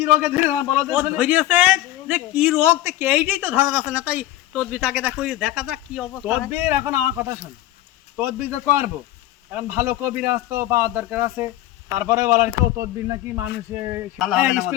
রোগে ধরে না বলো? ও ধরিয়েছে যে কি রোগ তো কেইটাই তো ধরা যাচ্ছে না। তাই তদবিটাকে দেখো দেখা যাক কি অবস্থা হয়। তদবির এখন আমার কথা শোন, তদবির তো করবো। এখন ভালো কবিরাজ তো পাওয়ার দরকার আছে। তারপরে বলার কেউ তদবির নাকি মানুষে ভালো হবে না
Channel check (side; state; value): right; quieter; 14.8 dB